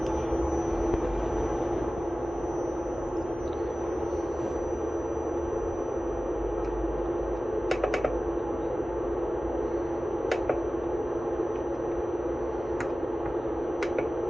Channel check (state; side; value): normal; both; correlation 0.97